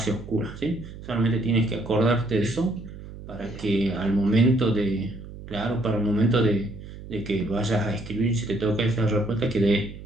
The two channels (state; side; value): noise; right; hum, 14 dB below the sound